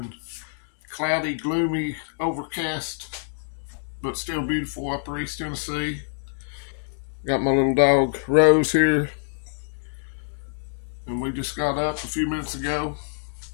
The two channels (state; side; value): silent; right; digital silence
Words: cloudy, gloomy, overcast, but still beautiful Upper East Tennessee. Got my little dog Rose here, and we just got up a few minutes ago.